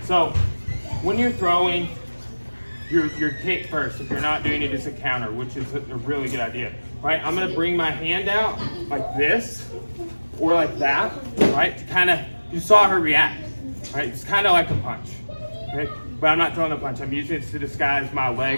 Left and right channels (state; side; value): inverted; both; correlation -1.00